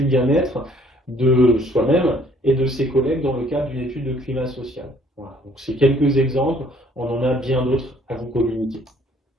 bien-être de soi-même et de ses collègues dans le cadre d'une étude de climat social. Voilà. Donc c'est quelques exemples, on en a bien d'autres à vous communiquer.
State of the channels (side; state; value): both; normal; correlation 0.60